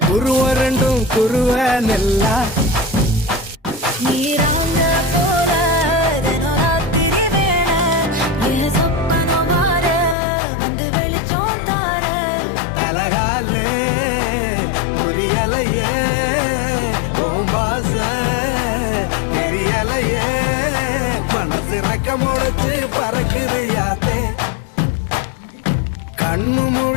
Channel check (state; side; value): drops out; right; at 10.2 s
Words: குருவ ரெண்டும் குருவ நெல்லா நீராங்க போல தினராத்திரி வேண என் சொப்பனோ மாற வந்து வெளிச்சம் தார தலகாலே புரியலையே பாச தெரியலையே மனசு ரக்க முளைச்சு பறக்குது யாத்தே கண்ணு